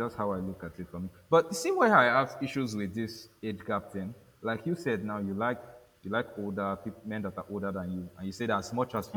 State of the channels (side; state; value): both; identical; correlation 1.00